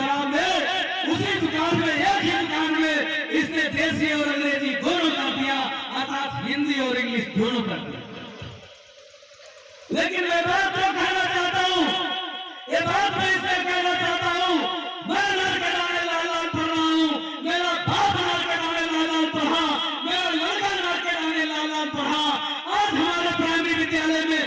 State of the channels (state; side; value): identical; both; correlation 1.00